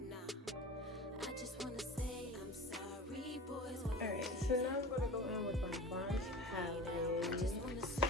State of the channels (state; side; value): normal; both; correlation 0.35